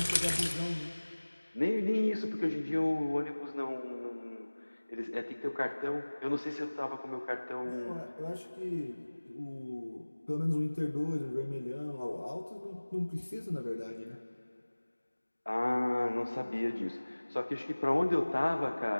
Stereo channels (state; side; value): inverted; both; correlation -1.00